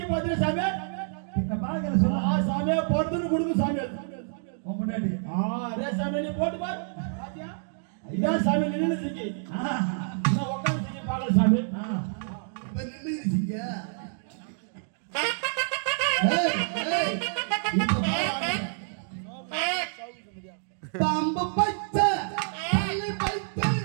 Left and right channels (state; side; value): silent; left; digital silence